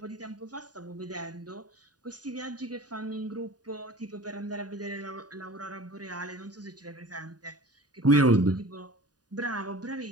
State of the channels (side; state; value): left; late; 0.68 ms